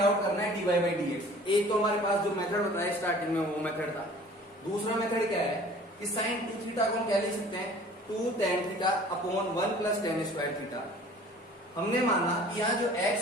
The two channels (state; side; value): normal; both; correlation 0.48